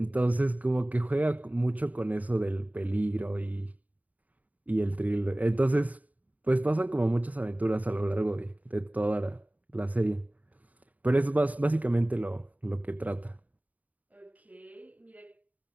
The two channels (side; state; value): left; late; 0.073 ms